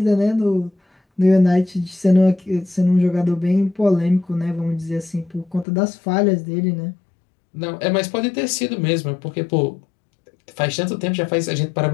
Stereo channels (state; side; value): drops out; right; at 5.7 s